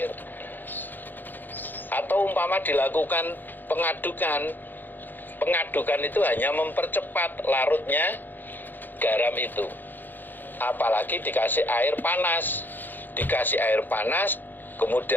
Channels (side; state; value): right; late; 0.089 ms